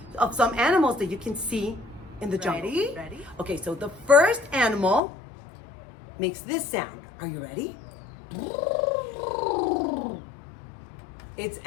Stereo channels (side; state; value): right; drops out; at 5.0 s